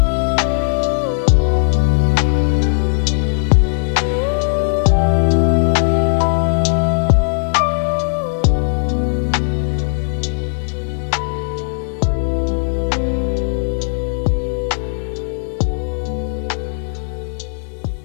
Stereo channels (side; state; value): right; silent; 68 dB below the other